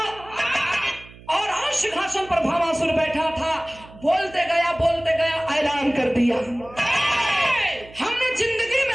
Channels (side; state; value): right; noise; hum, 21 dB below the sound